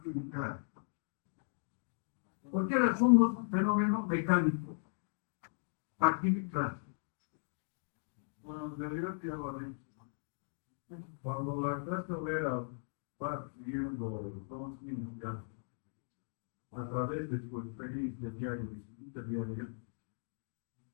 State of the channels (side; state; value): right; silent; digital silence